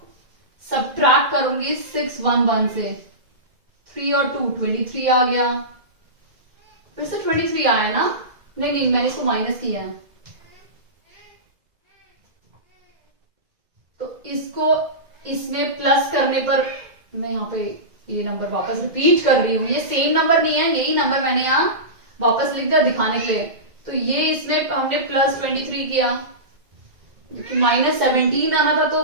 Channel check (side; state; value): left; late; 2.0 ms